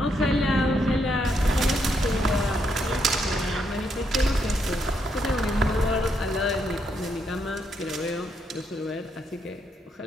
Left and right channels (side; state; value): both; normal; correlation 0.77